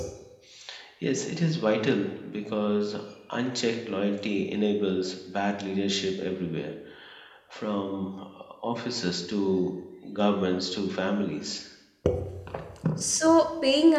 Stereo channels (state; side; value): identical; both; correlation 1.00